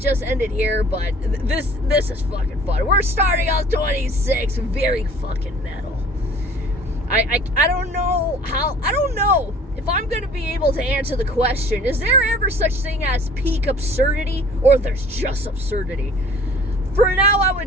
end it here, but this is fucking fun. We're starting off 26, very fucking metal. I don't know if I'm gonna be able to answer the question, is there ever such thing as peak absurdity, or there's just absurdity? For now, I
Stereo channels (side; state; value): both; normal; correlation 0.50